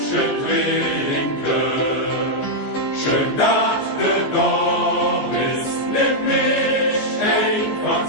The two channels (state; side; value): late; right; 14 ms